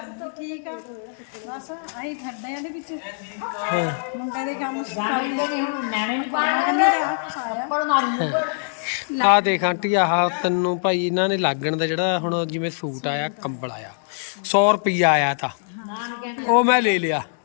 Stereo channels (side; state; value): right; silent; digital silence